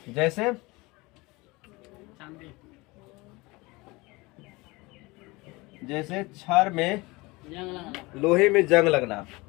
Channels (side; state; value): right; quieter; 23.3 dB